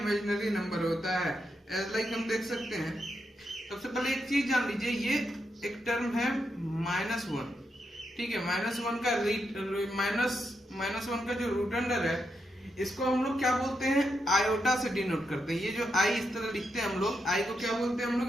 नंबर होता है। लाइक हम देख सकते हैं। सबसे पहले एक चीज जान लीजिए, ये एक टर्म है -1। ठीक है। -1 का जो रूट अंडर है, इसको हम लोग क्या बोलते हैं? आयोटा से डिनोट करते हैं। ये जो आई इस तरह लिखते हैं हम लोग, आई को क्या बोलते हैं हम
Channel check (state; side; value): normal; both; correlation 0.83